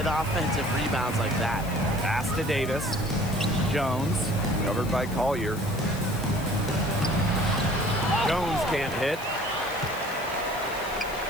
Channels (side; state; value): left; noise; hiss, 16 dB below the sound